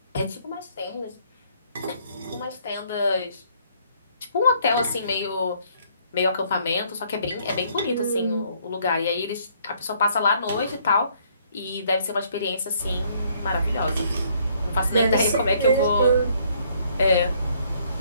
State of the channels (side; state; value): both; inverted; correlation -0.65